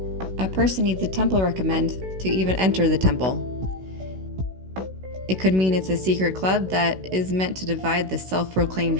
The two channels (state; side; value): late; left; 16 ms